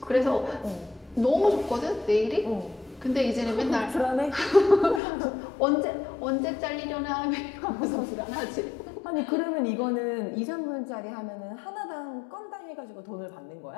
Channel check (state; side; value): drops out; right; at 5.0 s